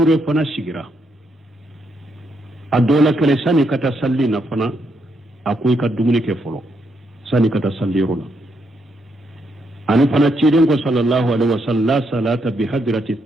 فنا سيغرا الدولة كله ساني كتا صلي نفنا أكوي كدومني كفلو ساني كتا صلي رولا أنا فنا كيدن صلى الله عليه وسلم لا صلاة بحضرة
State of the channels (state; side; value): normal; both; correlation 0.78